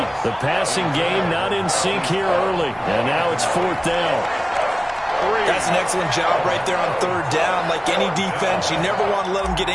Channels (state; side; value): identical; both; correlation 1.00